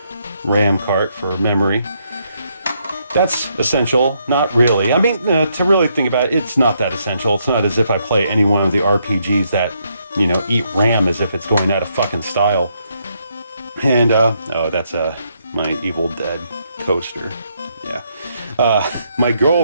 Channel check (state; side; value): inverted; both; correlation -0.75